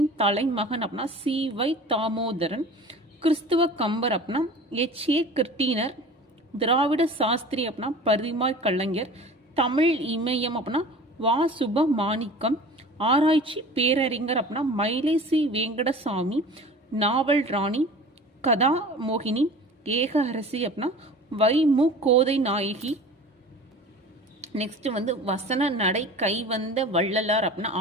தலைமகன் அப்படின்னா சி.வை. தாமோதரன். கிறிஸ்துவ கம்பர் அப்படின்னா எச்.ஏ. கிருட்டினர். திராவிட சாஸ்திரி அப்படின்னா பரிமாய் கலைஞர். தமிழ் இமயம் அப்படின்னா வா. சுபமாணிக்கம். ஆராய்ச்சி பேரறிஞர் அப்படின்னா மயிலை சி. வெங்கடசாமி. நாவல் ராணி கதா மோகினி. ஏக அரசி அப்படின்னா வை. மு. கோதை நாயகி. நெக்ஸ்ட் வந்து வசன நடை கைவந்த வள்ளலார் அப்படின்னா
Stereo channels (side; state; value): both; normal; correlation 0.40